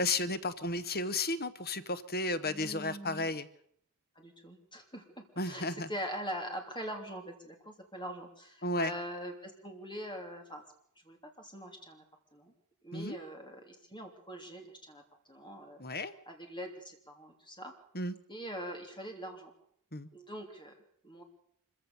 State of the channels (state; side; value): normal; both; correlation 0.14